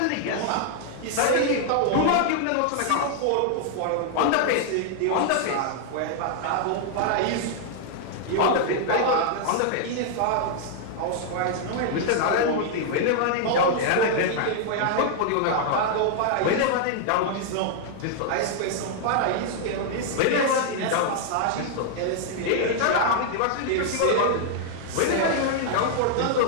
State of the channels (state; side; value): different; both; correlation -0.01